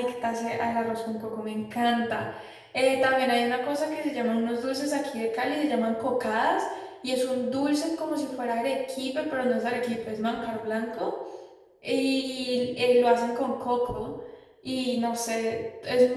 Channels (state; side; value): identical; both; correlation 1.00